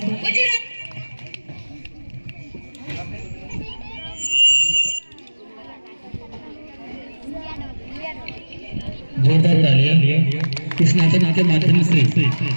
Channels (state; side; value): inverted; both; correlation -1.00